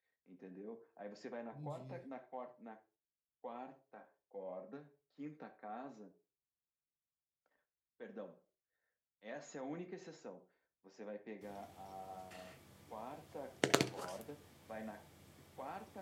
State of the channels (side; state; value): both; identical; correlation 1.00